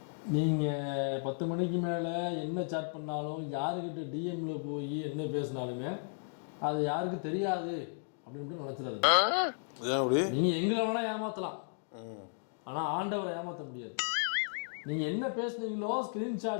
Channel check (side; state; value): right; silent; digital silence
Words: நீங்கள் 10 மணிக்கு மேலே என்ன சேட் பண்ணாலும் யாருக்கிட்ட டிஎம்ல போய் என்ன பேசினாலுமே அது யாருக்கு தெரியாது அப்படின்னு நினச்சிடாதீங்க. நீங்கள் எங்களை வேணால் ஏமாற்றலாம், ஆனால் ஆண்டவரை ஏமாற்ற முடியாது. நீங்கள் என்ன பேசுனீங்களோ